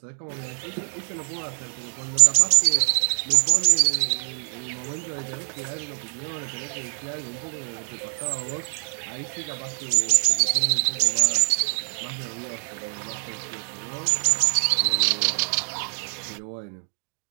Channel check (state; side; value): silent; left; 57 dB below the other